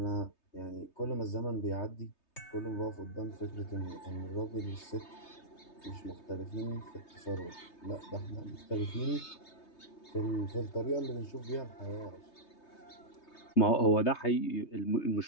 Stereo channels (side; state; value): right; late; 3.3 ms